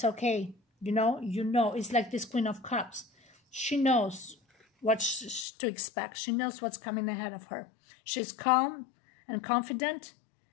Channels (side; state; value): right; drops out; at 5.5 s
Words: okay. You know, it's like this Queen of Cups. She knows what to expect. She knows what's coming ahead of her. She's calm and confident.